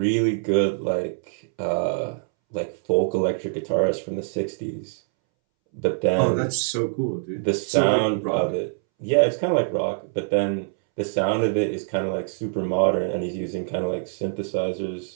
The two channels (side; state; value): left; silent; 62 dB below the other